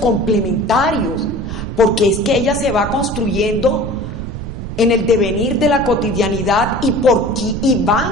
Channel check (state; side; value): noise; right; rumble, 7 dB below the sound